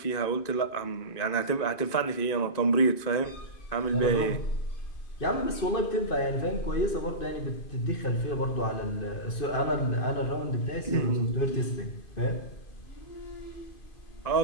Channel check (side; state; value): right; late; 2.5 ms